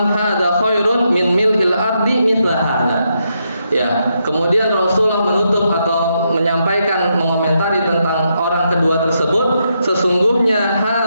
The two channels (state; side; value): inverted; both; correlation -0.81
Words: hadza khairun min mil'il ardi mithla hadza. Ya, kemudian Rasulullah menutup atau menyampaikan, mengomentari tentang orang kedua tersebut, sesungguhnya